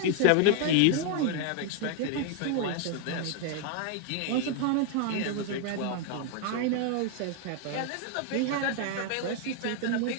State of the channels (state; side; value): different; both; correlation 0.00